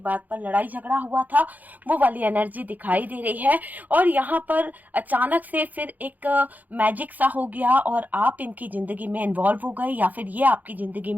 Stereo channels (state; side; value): late; left; 0.082 ms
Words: बात पर लड़ाई झगड़ा हुआ था। वो वाली एनर्जी दिखाई दे रही है। और यहाँ पर अचानक से फिर एक मैजिक सा हो गया और आप इनकी जिंदगी में इन्वॉल्व हो गए, या फिर ये आपकी जिंदगी